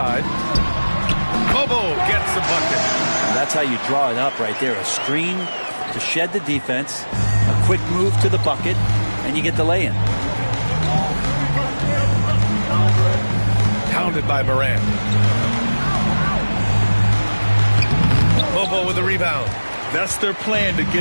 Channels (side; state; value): both; inverted; correlation -1.00